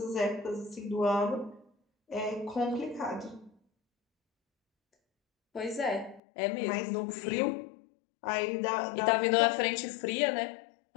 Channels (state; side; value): drops out; right; at 6.2 s